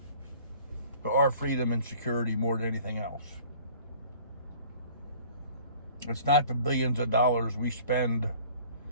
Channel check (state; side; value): inverted; both; correlation -0.50